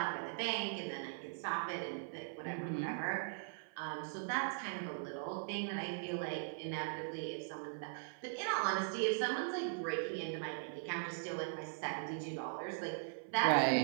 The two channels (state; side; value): silent; left; 51 dB below the other